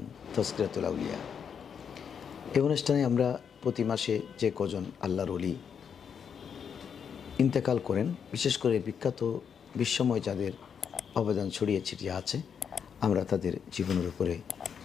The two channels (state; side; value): quieter; right; 7.3 dB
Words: তাজকিরাতুল আউলিয়া। এই অনুষ্ঠানে আমরা প্রতি মাসে যে কজন আল্লাহর ওলি ইন্তেকাল করেন, বিশেষ করে বিখ্যাত বিশ্বময় যাদের অবদান ছড়িয়ে ছিটিয়ে আছে, আমরা তাদের জীবনের উপরে